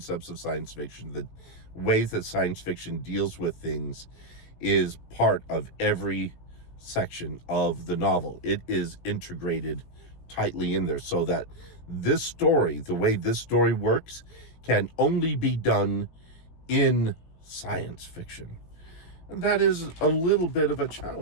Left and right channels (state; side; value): late; right; 18 ms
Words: of science fiction, the ways that science fiction deals with things is part of every section of the novel. It is integrated tightly in there so that this story, the way this story works, can only be done in science fiction. And that is a little bit of a